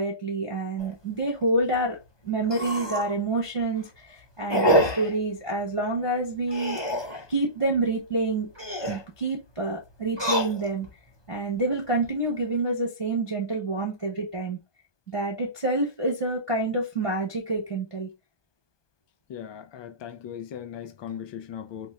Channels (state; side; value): late; right; 1.2 ms